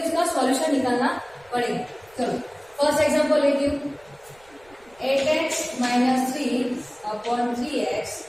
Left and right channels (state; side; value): noise; right; rumble, 30 dB below the sound